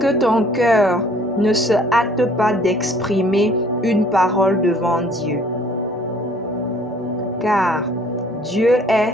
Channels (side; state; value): both; normal; correlation 0.57